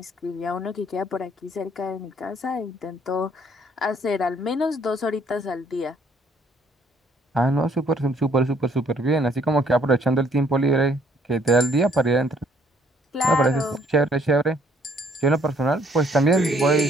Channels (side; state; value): both; normal; correlation 0.64